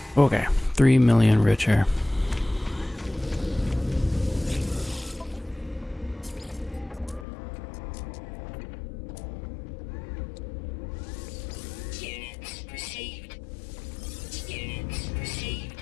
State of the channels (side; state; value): right; drops out; at 7.2 s